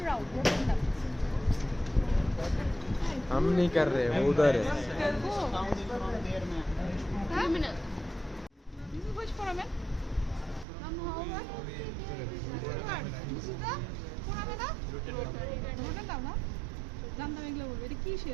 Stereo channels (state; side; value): drops out; left; at 10.7 s